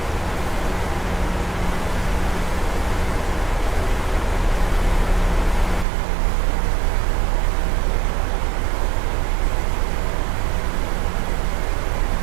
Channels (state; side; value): drops out; left; at 5.9 s